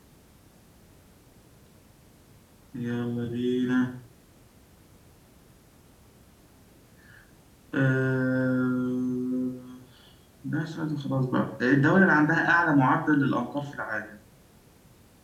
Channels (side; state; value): both; identical; correlation 1.00